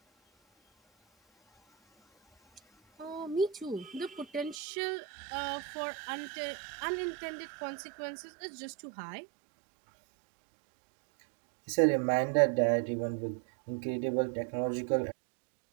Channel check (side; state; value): left; drops out; at 4.5 s